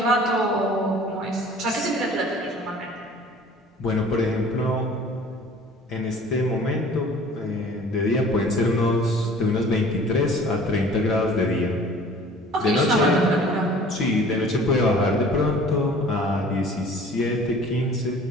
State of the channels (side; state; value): both; normal; correlation 0.48